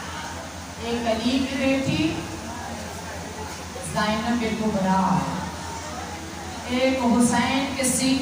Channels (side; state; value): both; identical; correlation 1.00